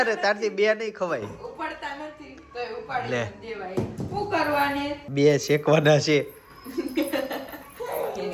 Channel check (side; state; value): both; identical; correlation 1.00